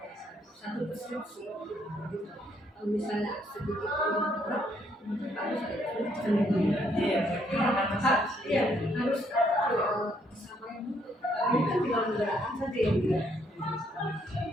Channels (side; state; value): both; normal; correlation 0.70